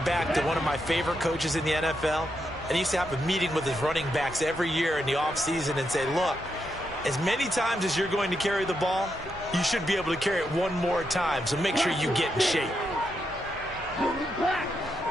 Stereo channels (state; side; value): normal; both; correlation 0.82